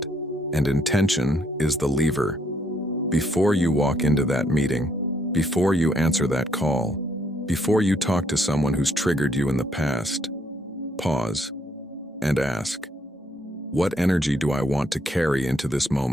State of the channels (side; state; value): both; normal; correlation 0.71